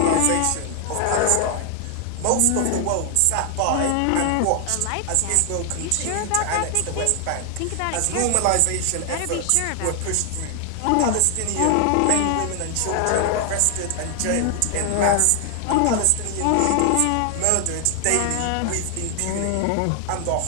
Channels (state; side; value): different; both; correlation 0.00